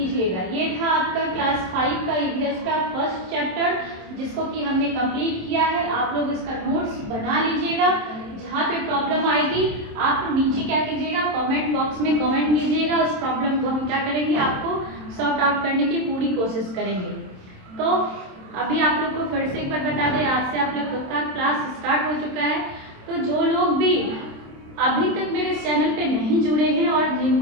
ये था आपका क्लास 5 का ईवीएस का फर्स्ट चैप्टर, जिसको कि हमने कंप्लीट किया है। आप लोग इसका नोट्स बना लीजिएगा। जहाँ पे प्रॉब्लम आएगी आप नीचे क्या कीजिएगा, कमेंट बॉक्स में कमेंट कीजिएगा। उस प्रॉब्लम को हम क्या करेंगे, आपको सॉर्ट आउट करने की पूरी कोशिश करेंगे। तो अभी आप लोग को फिर से एक बार बता दें, आज से आप लोग का क्लास स्टार्ट हो चुका है। तो जो लोग भी अभी तक मेरे चैनल पे नहीं जुड़े हैं और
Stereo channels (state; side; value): late; left; 27 ms